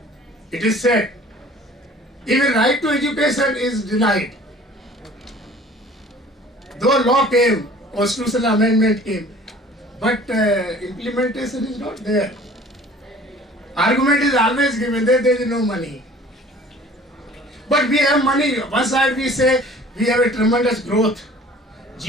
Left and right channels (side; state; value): both; normal; correlation 0.49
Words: It is said. Even right to education is denied. Though law came, constitutional amendment came, but implementation is not there. Argument is always given that there is no money. But we have money. One side we say we have a tremendous growth.